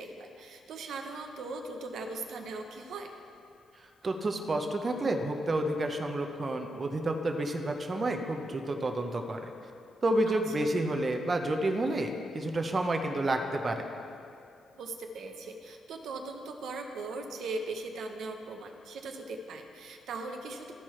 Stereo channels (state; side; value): normal; both; correlation 0.84